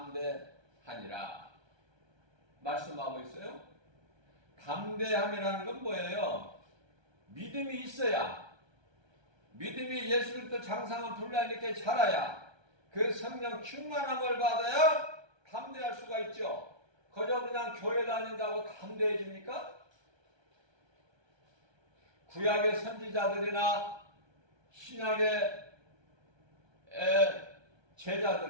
말씀하고 있어요. 담대함이라는 건 뭐예요? 믿음이 있어야, 믿음이 예수 그리스도 장성한 분량있게 자라야, 그 성령 충만함을 받아야 담대할 수가 있죠. 그저 그냥 교회 다닌다고 담대해집니까? 구약의 선지자들이나 신약의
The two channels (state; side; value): late; left; 1.3 ms